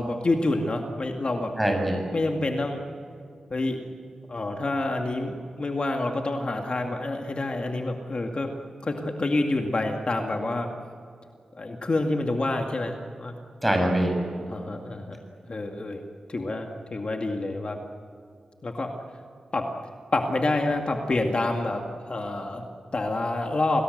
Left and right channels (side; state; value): both; normal; correlation 0.93